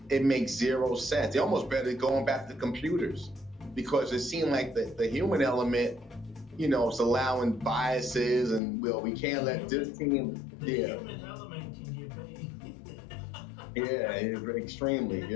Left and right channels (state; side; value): drops out; right; at 8.6 s